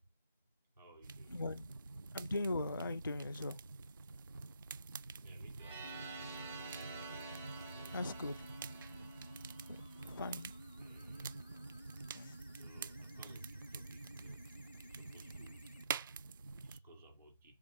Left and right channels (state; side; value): inverted; both; correlation -0.74